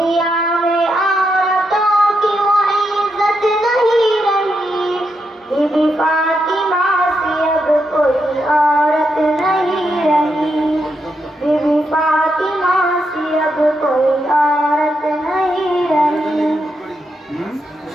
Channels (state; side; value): normal; both; correlation 0.83